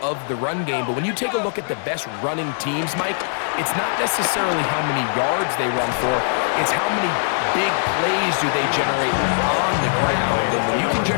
of the run game, but when you take a look at the best running teams, Mike, it's not necessarily how many yards they run for, it's how many big plays do they generate on the ground. And when you can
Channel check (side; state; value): right; silent; digital silence